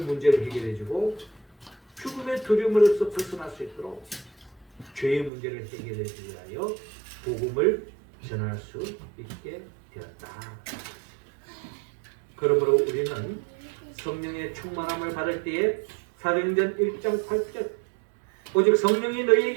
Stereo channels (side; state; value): left; drops out; at 5.3 s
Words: 문제를 해결해주고 죽음의 두려움으로서 벗어날 수 있도록 죄의 문제를 해결해주기 위하여 복음을 전할 수 있게 되었다. 그러므로 우리는 성령의 충만함을 받을 때에 사도행전 1장 8절 오직 성령이